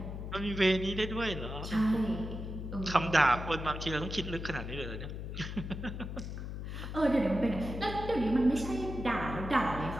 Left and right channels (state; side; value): noise; left; hum, 7 dB below the sound